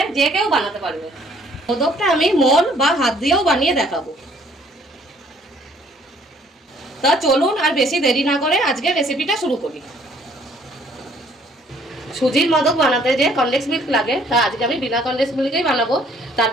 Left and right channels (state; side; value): normal; both; correlation 0.61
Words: যে কেউ বানাতে পারবে। মোদকটা আমি মোল বা হাত দিয়েও বানিয়ে দেখাবো। তা চলুন আর বেশি দেরি না করে আজকে রেসিপিটা শুরু করি। সুজির মোদক বানাতে যে কনডেন্স মিল্ক লাগে তা আজকে আমি বিনা কনডেন্স মিল্কেই বানাবো। তার